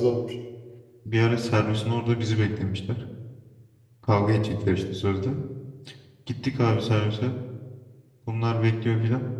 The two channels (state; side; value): identical; both; correlation 1.00